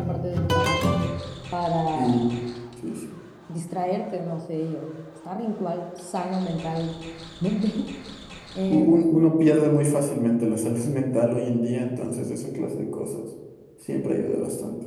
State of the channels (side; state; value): both; identical; correlation 1.00